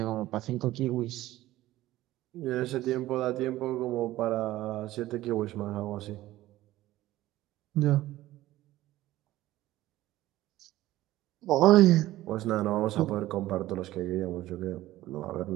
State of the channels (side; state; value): left; quieter; 15.8 dB